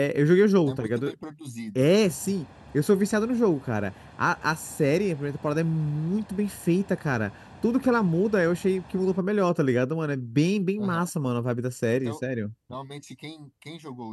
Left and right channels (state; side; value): identical; both; correlation 1.00